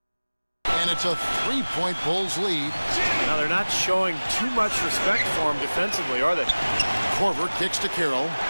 And it's a three-point Bulls lead. Now they're not showing too much respect for him defensively, are they? Korver kicks to Carroll.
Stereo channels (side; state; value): both; inverted; correlation -1.00